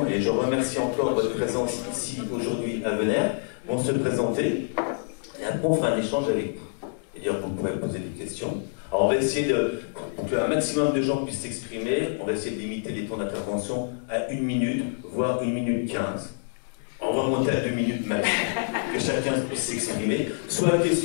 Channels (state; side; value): silent; right; 60 dB below the other